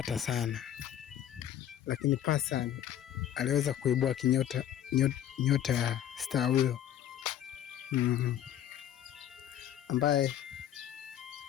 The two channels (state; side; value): quieter; right; 10.9 dB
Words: sana, lakini Passan aliweza kuibua nyota ya star huyo ambaye